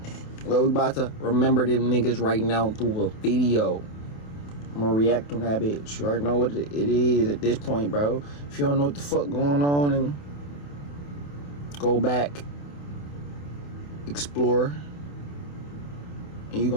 Well, we about to remember them niggas right now through a video. I'm gonna react on that bitch. You already know what it is at this point, bro. If you don't know what the fuck going on, and go back, explore, and you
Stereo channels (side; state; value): right; late; 28 ms